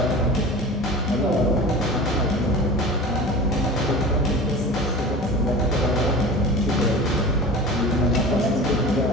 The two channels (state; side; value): normal; both; correlation 0.36